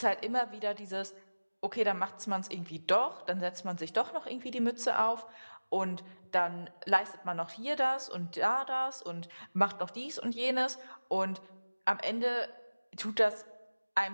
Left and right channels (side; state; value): both; inverted; correlation -1.00